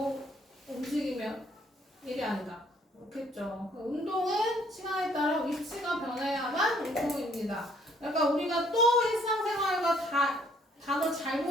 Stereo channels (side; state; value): both; normal; correlation 0.63